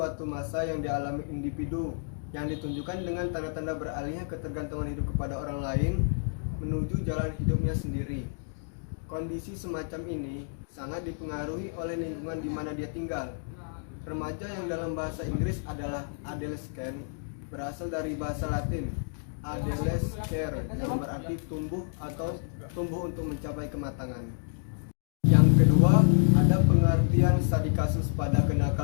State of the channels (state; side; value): silent; right; digital silence